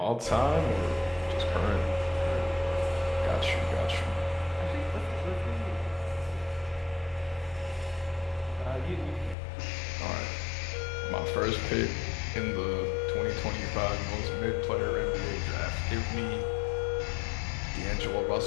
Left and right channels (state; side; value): drops out; right; at 9.3 s